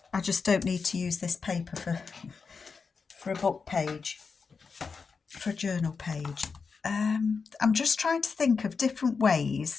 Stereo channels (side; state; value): right; quieter; 5.1 dB